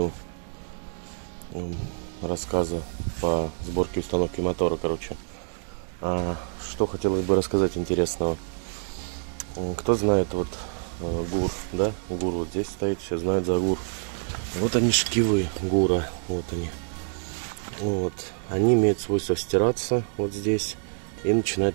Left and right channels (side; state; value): left; silent; digital silence